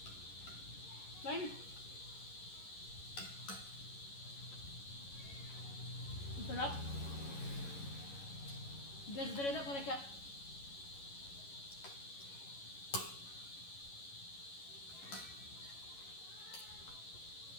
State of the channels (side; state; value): right; late; 11 ms